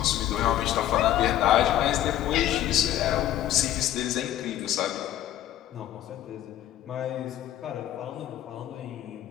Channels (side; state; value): right; quieter; 12.5 dB